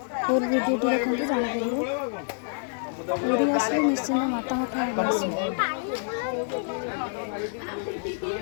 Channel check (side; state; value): right; silent; 60 dB below the other